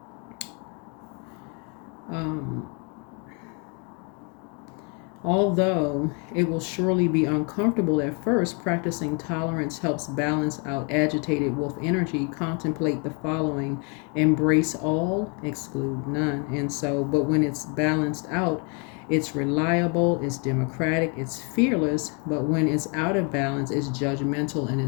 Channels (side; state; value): right; quieter; 35.2 dB